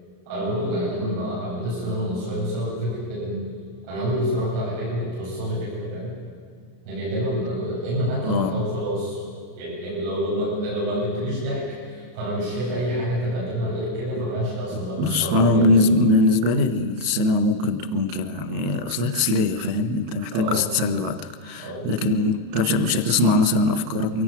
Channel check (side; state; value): left; late; 33 ms